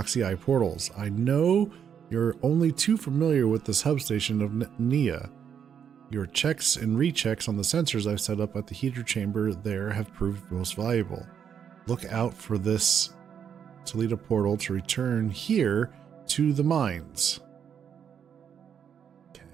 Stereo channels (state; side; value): quieter; left; 8.0 dB